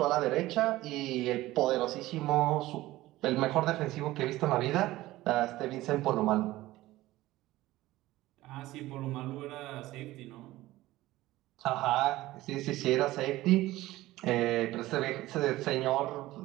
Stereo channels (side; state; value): left; quieter; 17.0 dB